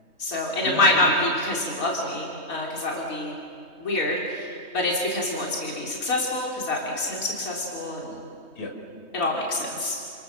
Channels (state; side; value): late; right; 3.2 ms